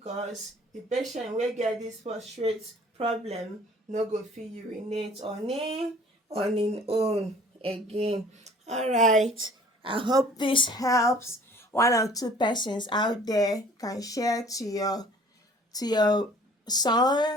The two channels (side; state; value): both; normal; correlation 0.52